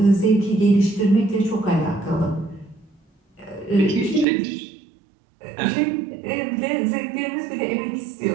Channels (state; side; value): drops out; left; at 4.2 s